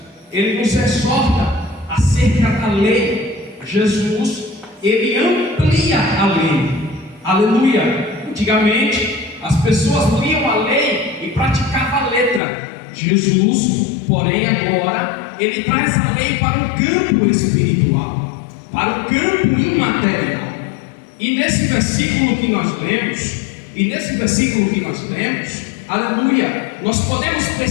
Ele nos exorta acerca da lei. Jesus, Ele amplia a lei. Aleluia! Antigamente, as pessoas liam a lei e praticavam a letra. Jesus, porém, agora, Ele traz a lei para o campo espiritual, para o campo imaterial. E nesse versículo que nós lemos, aleluia, nós podemos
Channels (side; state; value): right; drops out; at 12.4 s